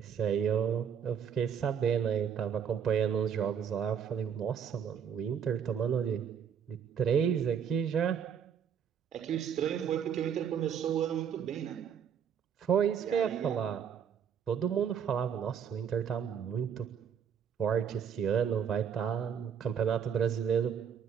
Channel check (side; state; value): left; quieter; 7.9 dB